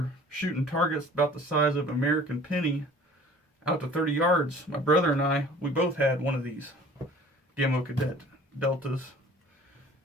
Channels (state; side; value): normal; both; correlation 0.49